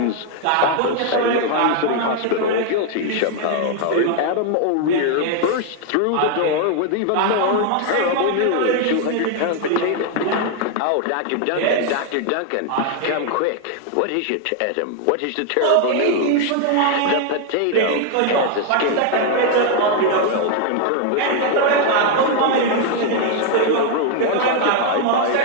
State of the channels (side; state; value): both; different; correlation 0.00